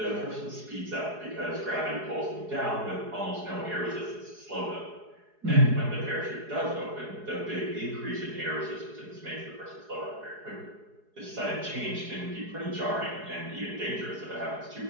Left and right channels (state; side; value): late; left; 4.8 ms